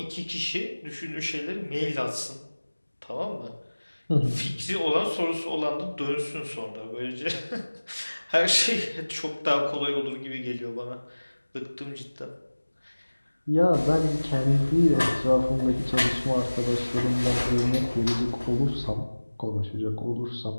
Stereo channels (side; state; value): both; inverted; correlation -1.00